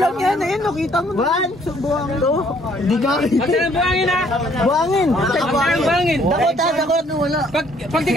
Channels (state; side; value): normal; both; correlation 0.63